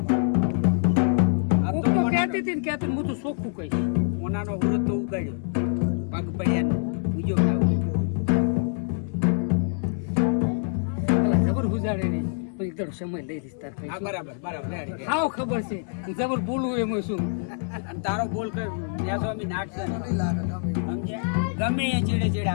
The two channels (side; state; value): right; silent; digital silence